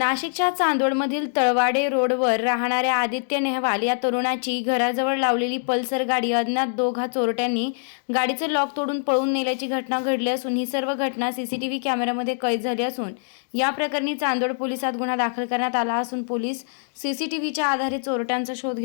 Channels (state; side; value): silent; right; digital silence